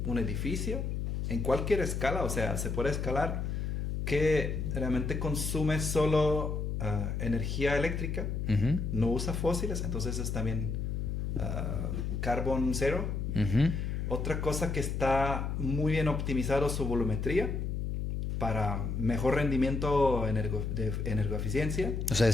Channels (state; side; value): noise; left; hum, 2 dB below the sound